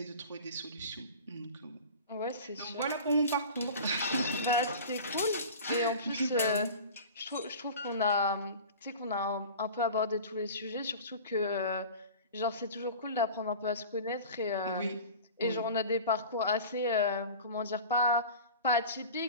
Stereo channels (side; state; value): both; inverted; correlation -0.37